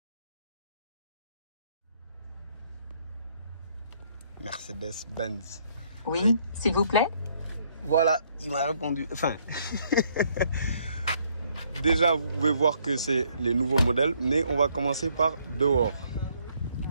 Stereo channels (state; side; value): inverted; both; correlation -0.68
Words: Mercedes-Benz. Oui, s'il vous plaît. Voilà, il m'a répondu. Enfin, déjà, vous pouvez voir que c'est les nouveaux modèles, mais on va commencer par dehors.